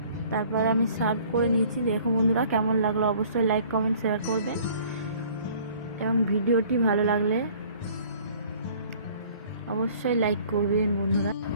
তারপর আমি সার্ভ করে নিয়েছি। দেখো বন্ধুরা, কেমন লাগলো অবশ্যই লাইক কমেন্ট শেয়ার করবেন, এবং ভিডিওটি ভালো লাগলে অবশ্যই লাইক করবেন বন্ধুরা।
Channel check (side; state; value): both; inverted; correlation -0.54